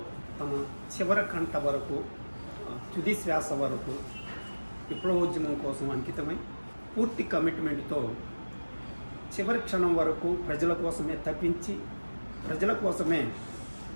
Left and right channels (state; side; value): inverted; both; correlation -1.00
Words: తమ చివరి కంట వరకు, తుది శ్వాస వరకు విప్లవోద్యమం కోసం అంకితమై పూర్తి కమిట్మెంట్తో చివరి క్షణం వరకు ప్రజల కోసమే తప్పించి ప్రజల కోసమే